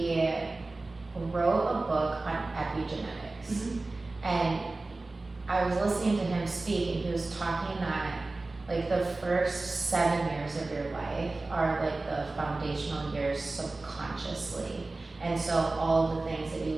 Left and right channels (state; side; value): quieter; left; 3.2 dB